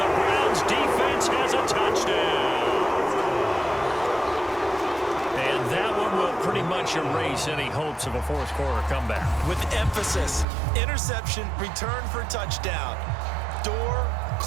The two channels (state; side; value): drops out; left; at 10.5 s